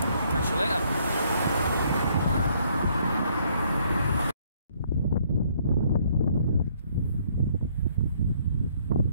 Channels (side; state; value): both; inverted; correlation -0.66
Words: Catch you later.